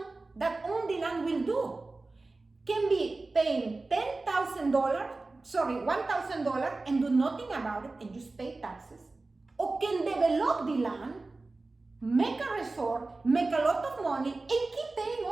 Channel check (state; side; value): quieter; left; 3.4 dB